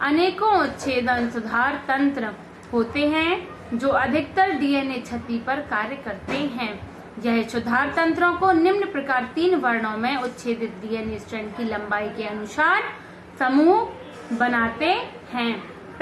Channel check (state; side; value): identical; both; correlation 1.00